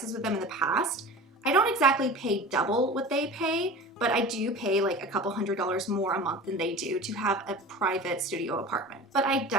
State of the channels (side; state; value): both; normal; correlation 0.36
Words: with them in the past. I don't exactly pay double what they pay, but I do pay like a couple $100s more a month than they do to have a private studio apartment. But I